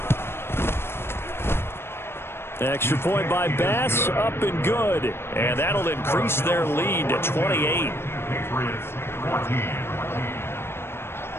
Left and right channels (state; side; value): late; right; 0.12 ms